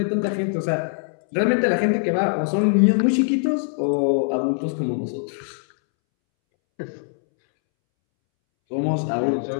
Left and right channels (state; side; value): silent; right; 64 dB below the other